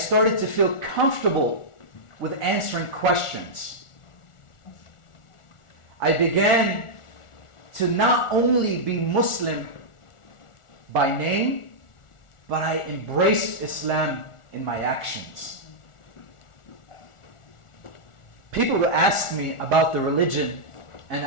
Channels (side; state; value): right; late; 1.4 ms